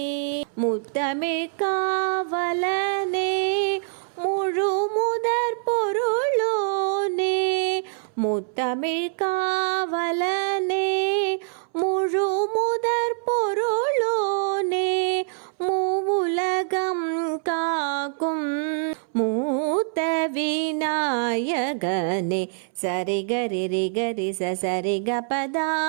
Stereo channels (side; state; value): left; silent; 62 dB below the other